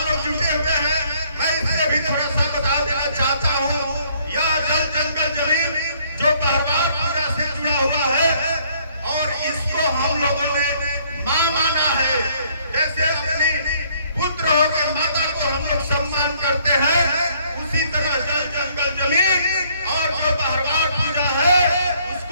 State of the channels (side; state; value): both; inverted; correlation -0.64